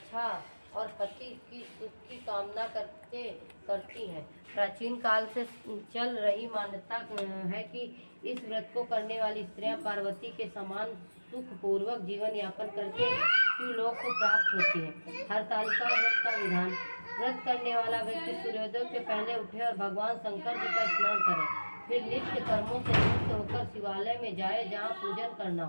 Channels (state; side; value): inverted; both; correlation -1.00